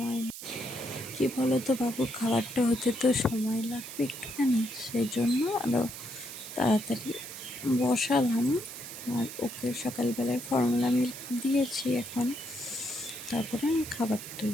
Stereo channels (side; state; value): right; noise; hiss, 11 dB below the sound